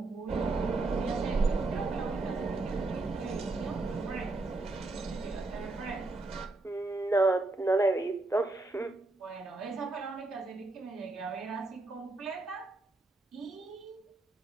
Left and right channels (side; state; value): left; quieter; 3.2 dB